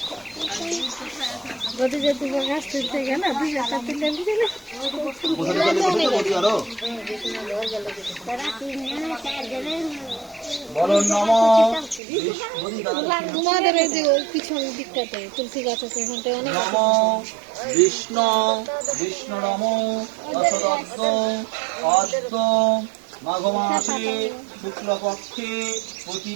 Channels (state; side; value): drops out; left; at 12.0 s